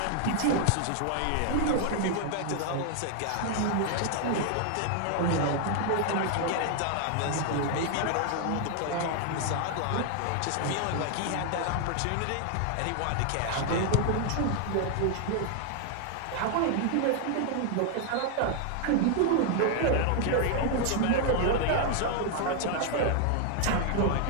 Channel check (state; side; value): different; both; correlation 0.00